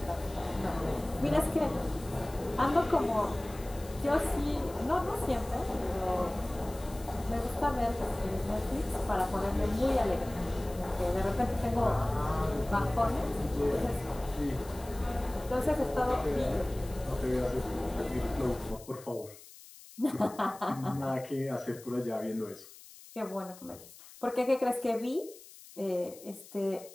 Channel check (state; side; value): noise; left; hiss, 19 dB below the sound